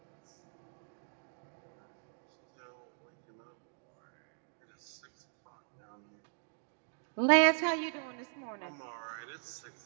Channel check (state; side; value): silent; left; 52 dB below the other